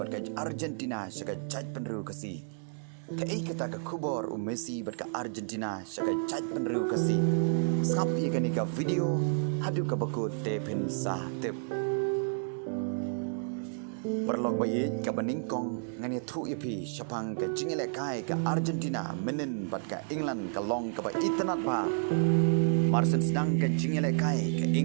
ka Argentina shaka chaj penru kasi ke ikata ka kubor Messi bat ka Argentina shaka chaj penru kasi sapi kani ka video hadu ka bakut te pin sa tip Perlok bayi ka beningkong ngani thu ipi syapang ka jingele kai ka Argentina menen bat ka England ka long ka ba itanat ba Marsen sedang ka jingele kai ka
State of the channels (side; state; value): left; silent; digital silence